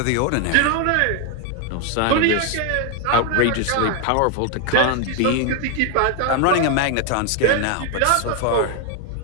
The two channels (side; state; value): both; different; correlation 0.01